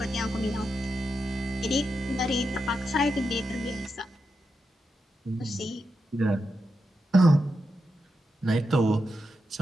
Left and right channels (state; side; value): normal; both; correlation 0.87